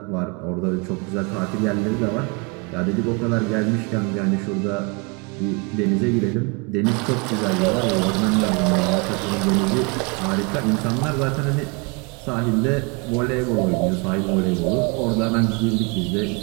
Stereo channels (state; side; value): quieter; left; 31.0 dB